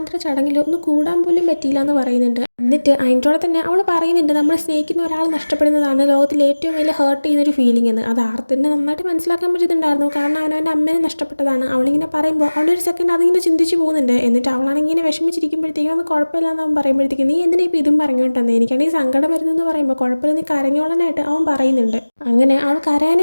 ചടങ്ങിൽ ഒന്ന് കൂടാൻ പോലും പറ്റിയില്ല എന്ന് പറയുന്നുണ്ട്. എന്നിട്ട് അതിൻ്റെ തന്നെ അവൾ പറയുന്നുണ്ട് നമ്മൾ സ്നേഹിക്കുന്ന ഒരാൾ നഷ്ടപ്പെടുന്നതാണ് ലോകത്തിൽ ഏറ്റവും വലിയ ഹേർട്ട് ചെയ്യുന്നൊരു ഫീലിംഗ് എന്ന്. അത് ആർത്തിനെ നന്നായിട്ട് മനസ്സിലാക്കാൻ പറ്റുന്നുണ്ടായിരുന്നു. കാരണം അവൻ്റെ അമ്മേനെ നഷ്ടപ്പെട്ടതാണ്. അവളിങ്ങനെ പറയുമ്പോൾ അവളൊരു സെക്കൻഡ് അതിങ്ങനെ ചിന്തിച്ച് പോകുന്നുണ്ട്. എന്നിട്ട് അവളാണെങ്കിൽ ഇങ്ങനെ വിഷമിച്ചിരിക്കുമ്പോഴത്തേക്കും അത് കുഴപ്പമില്ലെന്ന് അവൻ പറയുമ്പോഴത്തേക്കും നീ എന്തിനാ ഇപ്പോൾ ഇതും പറഞ്ഞുകൊണ്ടെന്ന്, എനിക്കാണെങ്കിൽ സങ്കടം വരുന്നതെന്ന് പറയുമ്പോൾ കുഴപ്പമില്ല നീ കരഞ്ഞോളനായിട്ട് അവൻ പറയുന്നുണ്ട്. അങ്ങനെ അവൾ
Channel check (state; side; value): inverted; both; correlation -1.00